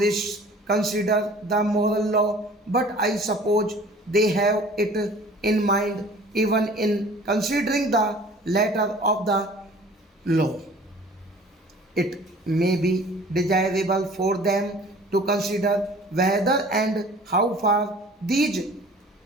consider the moral law, but I suppose they have it in mind even in considering the letter of the law. It may be desirable for them to consider whether and how far these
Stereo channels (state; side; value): normal; both; correlation 0.48